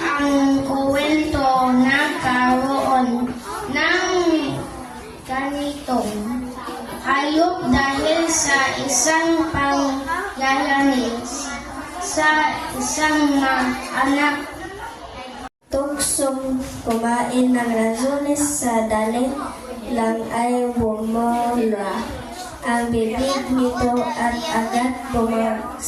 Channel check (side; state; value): both; identical; correlation 1.00